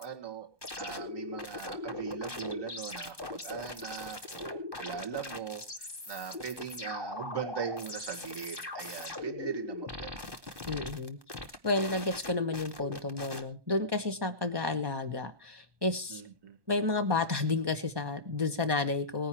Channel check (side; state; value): left; late; 1.2 ms